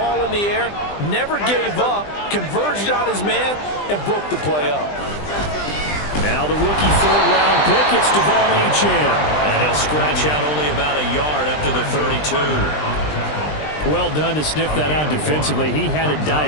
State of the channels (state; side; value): late; right; 20 ms